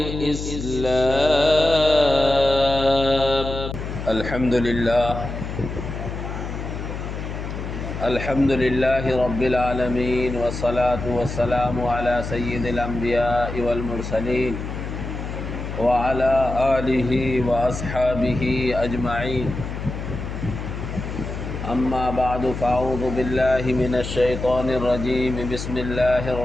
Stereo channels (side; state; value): left; noise; hum, 6 dB below the sound